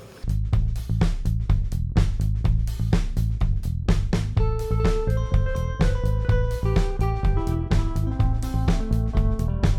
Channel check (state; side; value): identical; both; correlation 1.00